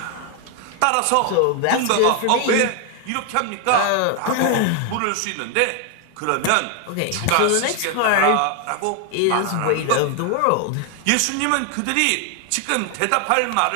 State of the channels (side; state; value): both; different; correlation 0.01